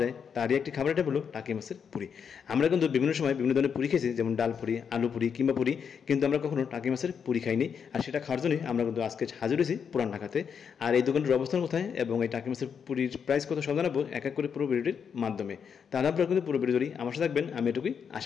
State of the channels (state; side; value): quieter; right; 7.0 dB